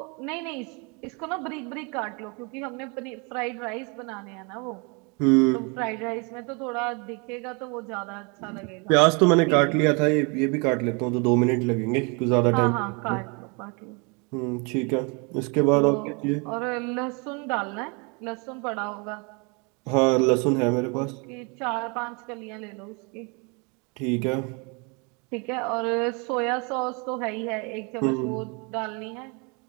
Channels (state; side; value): quieter; left; 31.9 dB